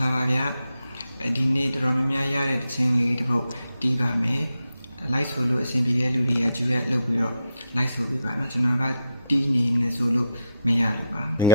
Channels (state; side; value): inverted; both; correlation -0.82